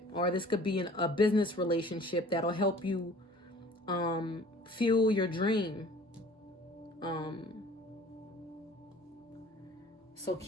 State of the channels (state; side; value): normal; both; correlation 0.49